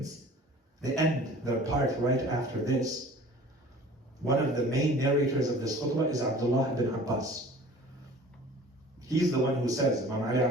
The end, the part right after this, one of the main narrators of this khutbah is Abdullah ibn Abbas. He's the one who says, Imam Ali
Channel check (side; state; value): both; normal; correlation 0.46